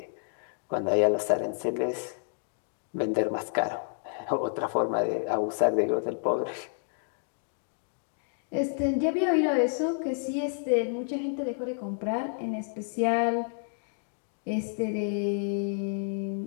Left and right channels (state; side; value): silent; right; digital silence